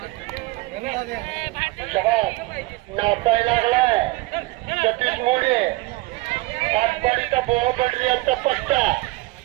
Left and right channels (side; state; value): left; quieter; 21.2 dB